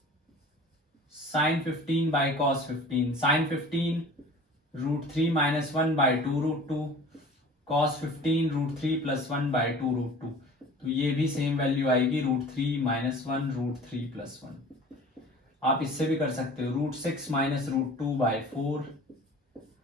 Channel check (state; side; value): normal; both; correlation 0.43